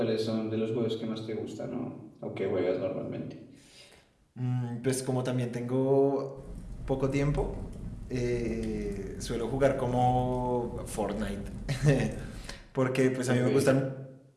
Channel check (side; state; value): both; identical; correlation 1.00